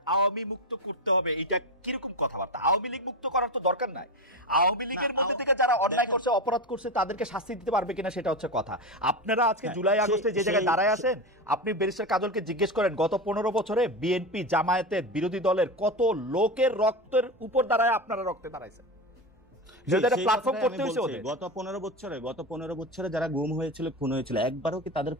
আওয়ামী মুক্ত করতে হবে, এটা কিরকম কথাবার্তা? আওয়ামী লীগ মুক্ত করার তো দরকার নাই। আওয়ামী লীগের মধ্যে থেকে যারা অন্যায় করছে, অপরাধ করছে, তাদেরকে শাস্তি দিতে পারবে কিনা সেটা হচ্ছে কথা। আপনারা আজকে জুলাই আগস্টে যে জায়গায় দাঁড়ায় আছেন, আপনি ব্যারিস্টার কাজলকে জিজ্ঞেস করেন গত 15 বছরে বিএনপি জামায়াতের বিরোধী দলের কত লোকের রক্তের উপর দাঁড়ায় আপনারা রক্তে দাঁড়াইছেন। গত 15 বছরে যারা গুম হয়েছিল, খুন হয়েছিল, একবারও কি তাদের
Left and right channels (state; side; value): normal; both; correlation 0.20